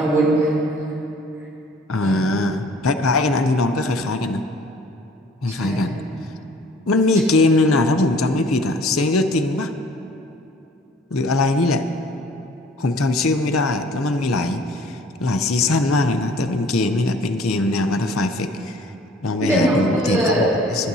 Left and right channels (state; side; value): normal; both; correlation 0.53